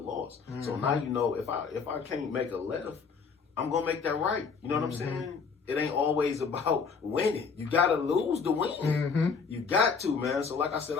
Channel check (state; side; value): quieter; right; 5.5 dB